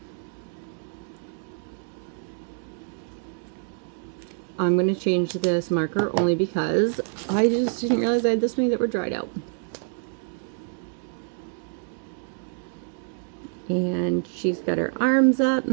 I'm going to change this marker only because I just didn't realize I had this many that were dried out. And she's got her arms up.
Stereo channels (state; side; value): silent; left; 57 dB below the other